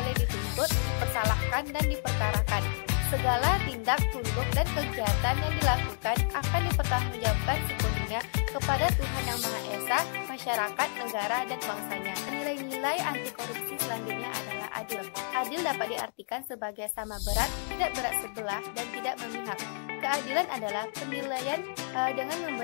dituntut, dipersalahkan, dan diperkarakan. Segala tindak tunduk dan kegiatan yang dilakukan akan dipertanggungjawabkan sepenuhnya kepada Tuhan Yang Maha Esa, masyarakat, negara, dan bangsanya. Nilai-nilai anti korupsi selanjutnya adalah adil. Adil dapat diartikan sebagai sama berat, tidak berat sebelah, dan tidak memihak. Keadilan adalah penilaian dengan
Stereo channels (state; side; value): silent; right; digital silence